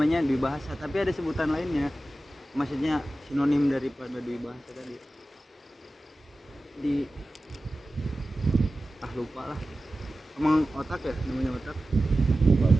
dwi bahasa, tapi ada sebutan lainnya. Maksudnya sinonim daripada dwi bahasa tadi. Lupa lah. Emang otak ya, namanya otak.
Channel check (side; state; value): both; normal; correlation 0.95